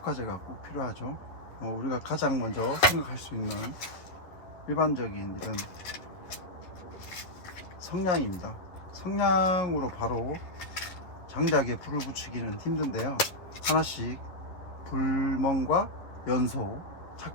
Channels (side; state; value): right; late; 11 ms